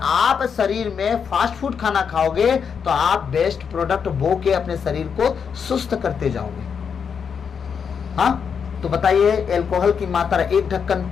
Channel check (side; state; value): right; quieter; 6.7 dB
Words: शरीर में फास्ट फूड खाना खाओगे तो आप बेस्ट प्रोडक्ट बो के अपने शरीर को सुस्त करते जाओगे। हाँ, तो बताइए, अल्कोहल की मात्रा 1 ढक्कन